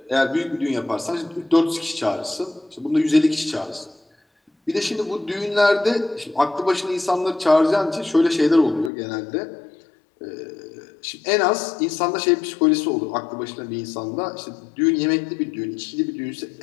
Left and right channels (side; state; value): right; drops out; at 8.9 s